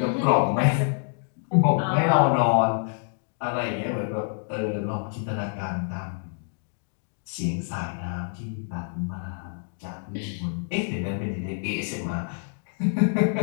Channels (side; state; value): right; silent; 60 dB below the other